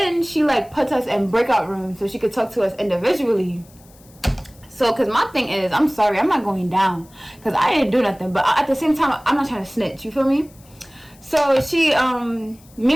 she like puts us in breakout rooms so she could talk to us individually. So, because my thing is, I'm sorry, I'm not going down, because I didn't do nothing. But at the same time, I'm not trying to snitch, you feel me? So she, me and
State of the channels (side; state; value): left; noise; hiss, 27 dB below the sound